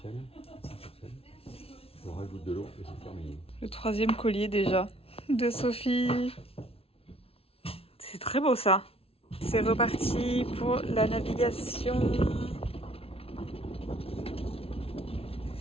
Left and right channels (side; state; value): right; late; 0.28 ms